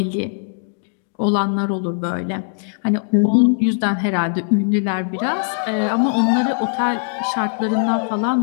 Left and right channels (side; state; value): right; silent; digital silence